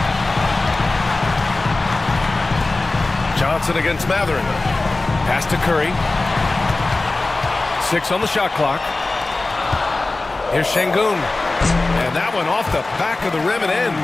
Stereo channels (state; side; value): quieter; right; 3.2 dB